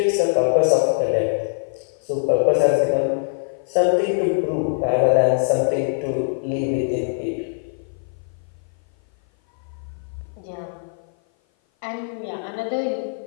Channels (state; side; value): silent; right; 56 dB below the other